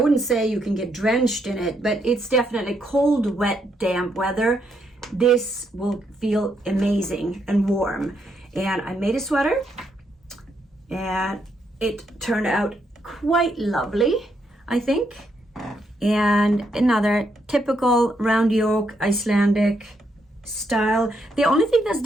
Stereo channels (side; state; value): both; normal; correlation 0.77